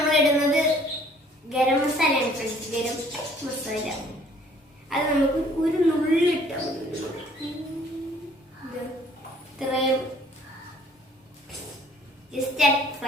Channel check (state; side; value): normal; both; correlation 0.58